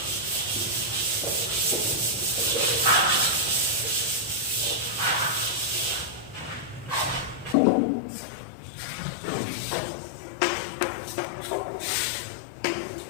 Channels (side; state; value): right; drops out; at 7.6 s